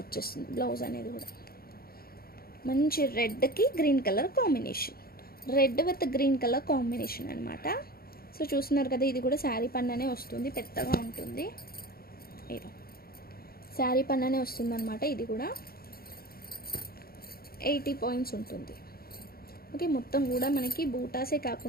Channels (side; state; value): right; late; 0.44 ms